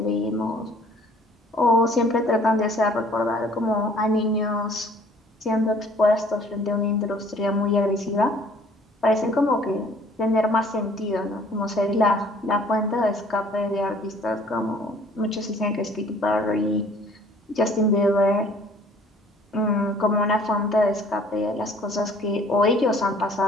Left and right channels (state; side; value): normal; both; correlation 0.55